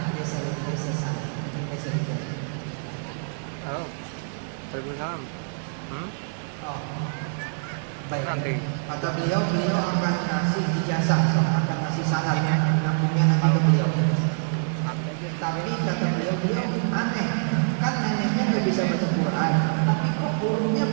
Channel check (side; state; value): left; silent; 57 dB below the other